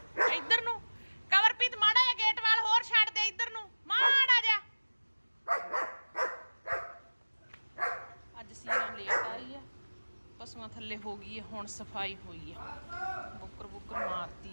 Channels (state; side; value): inverted; both; correlation -1.00